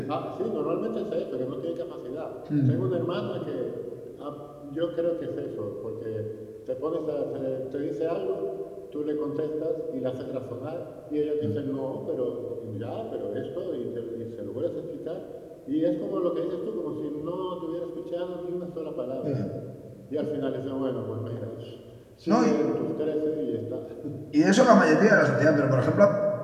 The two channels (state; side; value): identical; both; correlation 1.00